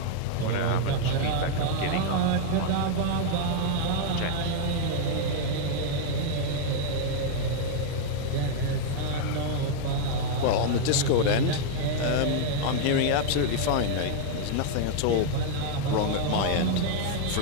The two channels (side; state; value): both; different; correlation -0.01